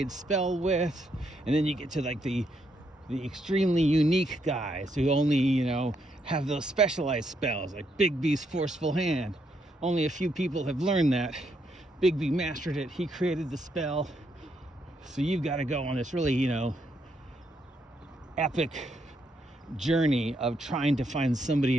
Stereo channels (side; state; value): both; normal; correlation 0.76